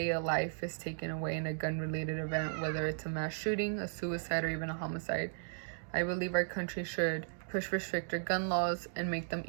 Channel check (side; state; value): left; silent; digital silence